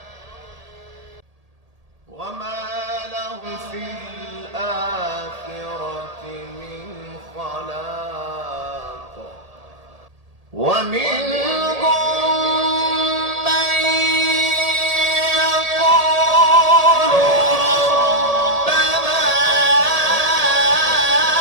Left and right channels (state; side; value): late; left; 1.8 ms